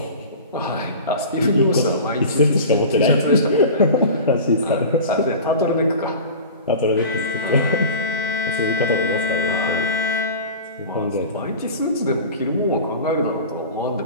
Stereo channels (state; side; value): inverted; both; correlation -0.35